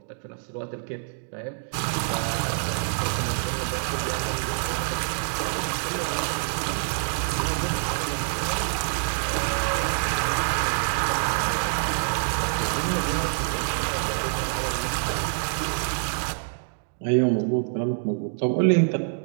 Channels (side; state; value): left; silent; digital silence